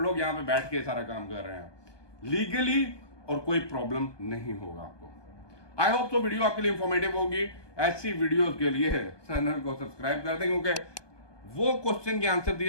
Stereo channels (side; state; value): right; late; 1.2 ms